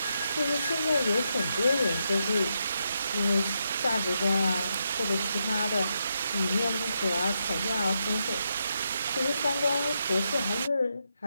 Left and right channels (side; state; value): both; inverted; correlation -0.82